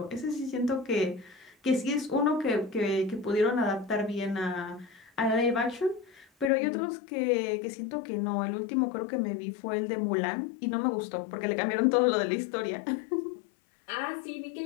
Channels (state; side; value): drops out; right; at 6.5 s